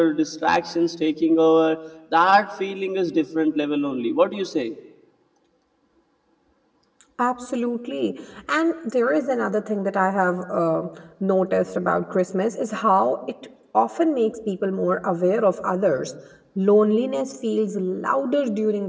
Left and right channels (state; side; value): identical; both; correlation 1.00